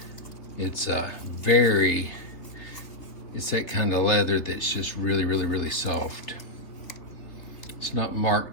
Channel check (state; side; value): late; right; 3.5 ms